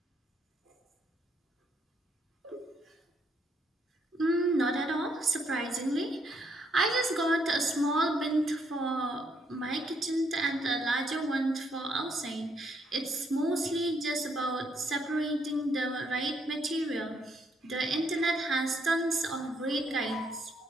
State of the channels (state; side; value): normal; both; correlation 0.72